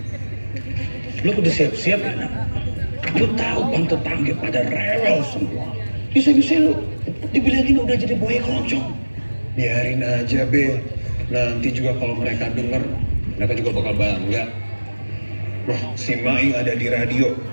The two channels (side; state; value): both; inverted; correlation -1.00